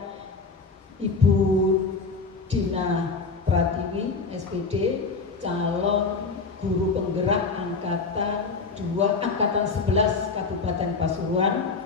Ibu Dina Pratiwi SPD, calon guru penggerak angkatan 11 Kabupaten Pasuruan.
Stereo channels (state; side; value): quieter; right; 4.4 dB